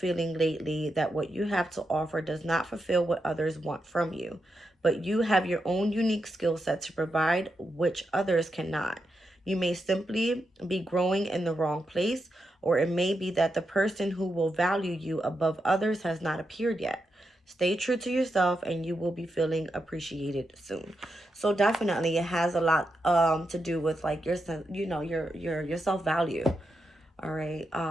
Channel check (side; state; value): both; normal; correlation 0.85